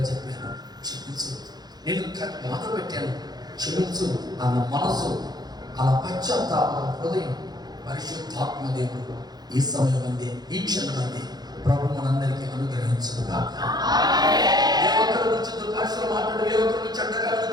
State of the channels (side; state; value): left; late; 0.19 ms